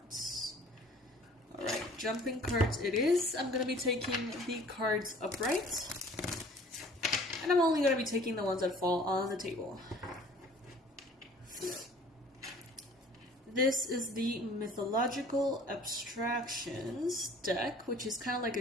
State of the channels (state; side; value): normal; both; correlation 0.51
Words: Alright, jumping cards it is. I'm going to be taking the cards upright. And I'm only going to be taking the ones that fall on the table. This is the Mythological Abstractions deck, which is kind of like